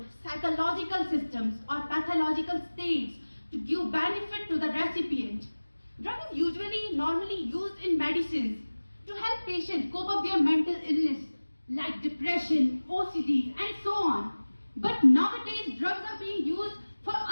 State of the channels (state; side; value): inverted; both; correlation -1.00